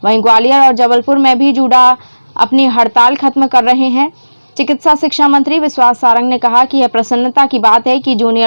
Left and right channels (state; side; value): inverted; both; correlation -1.00